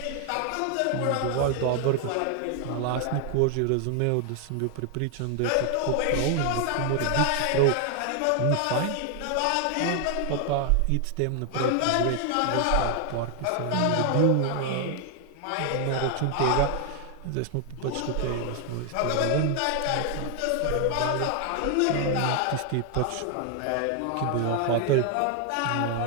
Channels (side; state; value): both; different; correlation 0.00